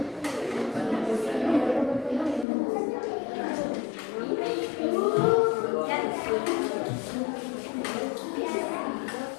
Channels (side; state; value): right; drops out; at 2.5 s